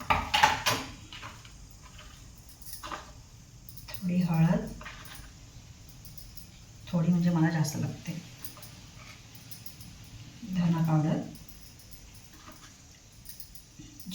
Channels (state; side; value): identical; both; correlation 1.00